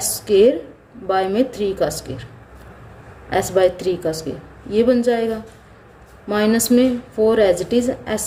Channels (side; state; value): both; identical; correlation 1.00